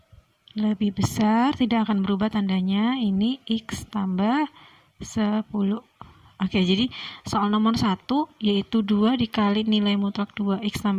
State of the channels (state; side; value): identical; both; correlation 1.00